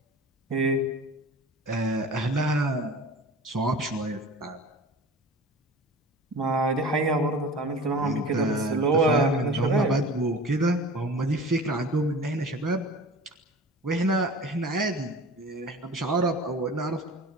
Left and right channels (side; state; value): both; normal; correlation 0.39